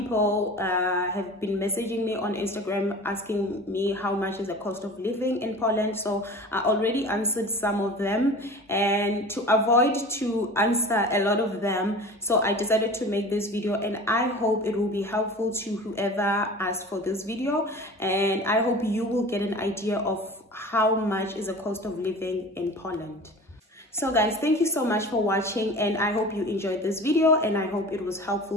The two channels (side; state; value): both; normal; correlation 0.38